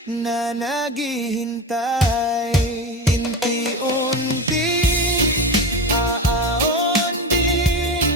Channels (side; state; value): both; normal; correlation 0.23